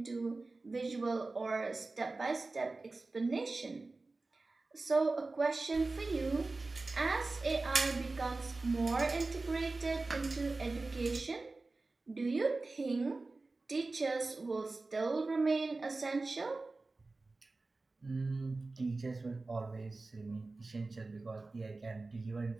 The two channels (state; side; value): quieter; left; 3.4 dB